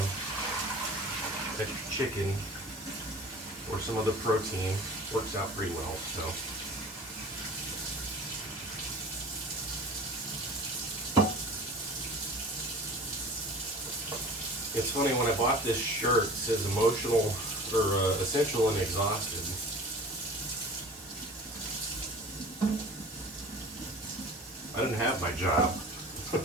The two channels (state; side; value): normal; both; correlation 0.41